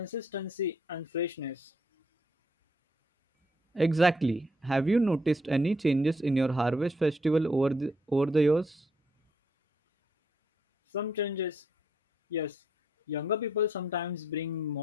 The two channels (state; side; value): normal; both; correlation 0.72